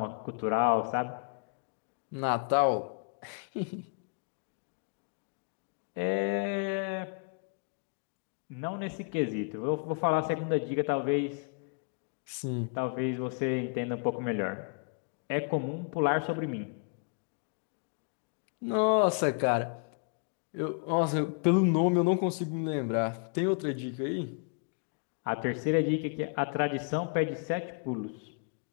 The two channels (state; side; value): quieter; right; 39.5 dB